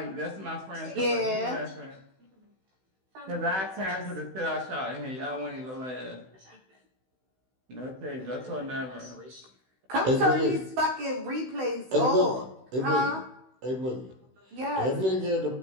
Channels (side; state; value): left; late; 16 ms